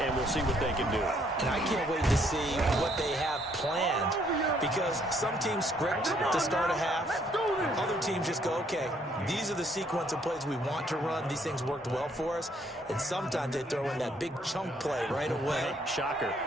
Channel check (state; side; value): normal; both; correlation 0.67